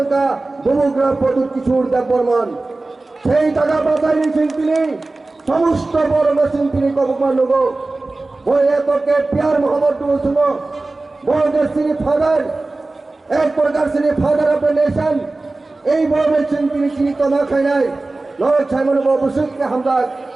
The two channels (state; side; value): quieter; left; 3.2 dB